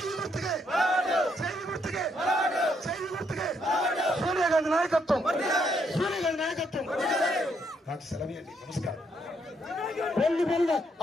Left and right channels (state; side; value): normal; both; correlation 0.74